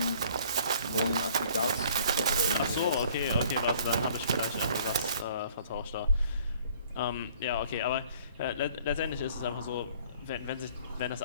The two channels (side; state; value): both; inverted; correlation -0.55